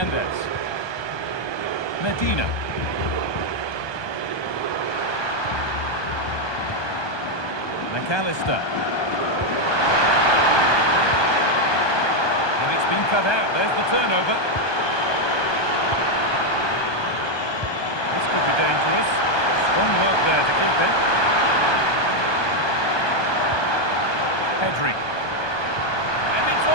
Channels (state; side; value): late; right; 1.2 ms